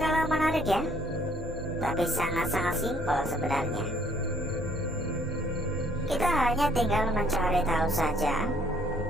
menarik ya, tapi sangat-sangat simpel sebenarnya. Kita hanya tinggal mencari tahu saja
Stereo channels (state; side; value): normal; both; correlation 0.63